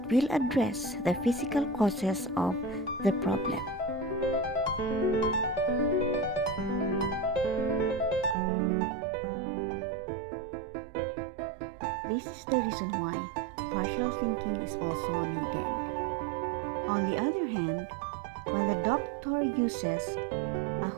will address the physical causes of the problem. This is the reason why partial thinking is also needed. On the other hand, when the doctor uses a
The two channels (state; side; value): drops out; left; at 8.3 s